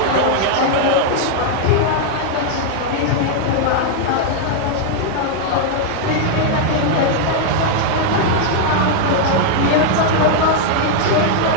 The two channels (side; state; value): both; different; correlation 0.00